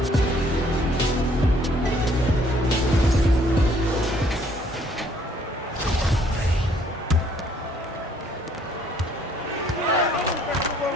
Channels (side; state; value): both; normal; correlation 0.63